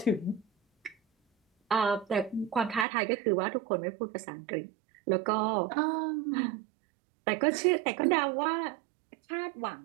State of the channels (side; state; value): left; drops out; at 2.9 s